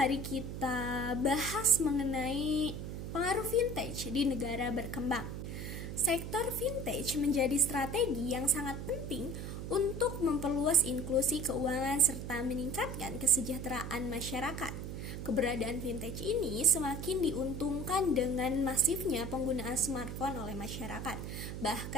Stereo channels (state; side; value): noise; right; hum, 6 dB below the sound